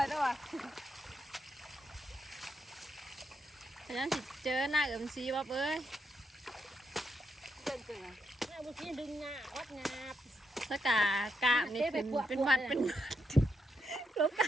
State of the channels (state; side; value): normal; both; correlation 0.81